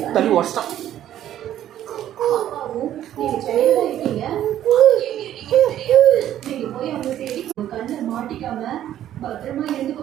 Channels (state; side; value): quieter; left; 11.7 dB